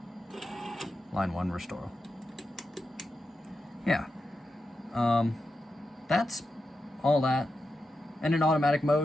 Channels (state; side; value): normal; both; correlation 0.89